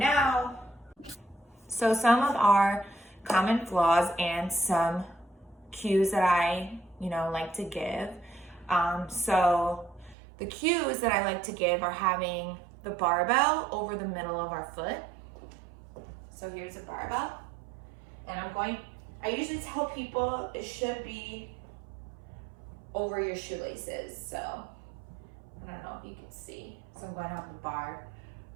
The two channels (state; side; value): drops out; left; at 10.2 s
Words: So some of our common flaws and some cues that I, like to give. So the cues that I like to give are having the barbell over the middle of our foot. So here's a barbell. And I usually tell people it should be over your shoelaces. So I don't know if you can see. So I'm going to have the bar